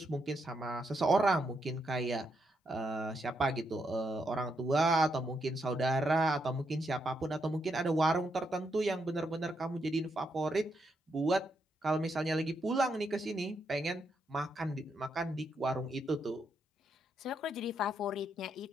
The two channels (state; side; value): normal; both; correlation 0.80